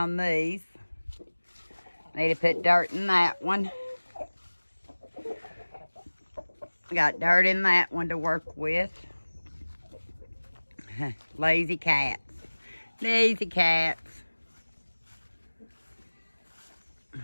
these. Need to put dirt in that one. Got dirt in that one to work with. Lazy cats. Lazy cats.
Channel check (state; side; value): inverted; both; correlation -1.00